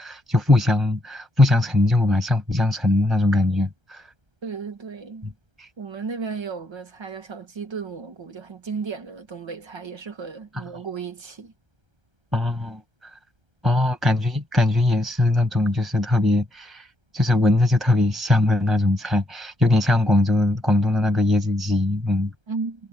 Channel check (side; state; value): left; late; 1.3 ms